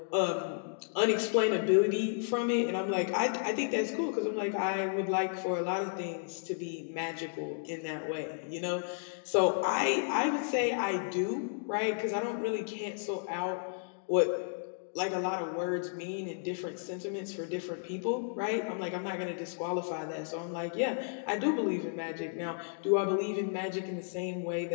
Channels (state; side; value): silent; right; digital silence